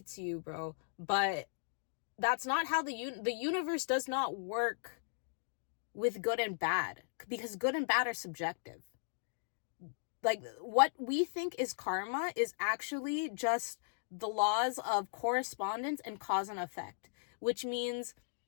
to you, bro, but that's not how the universe does not work with good and bad, because good and bad are subjective. Like, what we think is karma is actually just the laws of correspondence and cause and effect, which means,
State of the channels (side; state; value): right; silent; digital silence